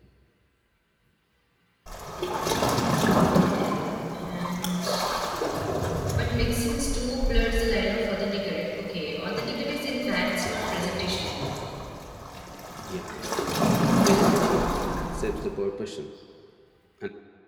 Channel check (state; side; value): identical; both; correlation 1.00